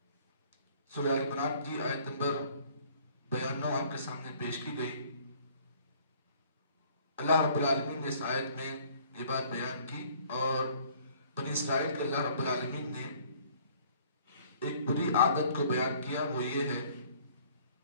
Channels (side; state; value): both; inverted; correlation -0.56